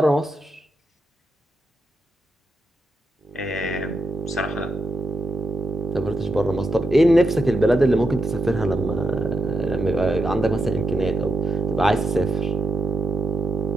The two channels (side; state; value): both; normal; correlation 0.86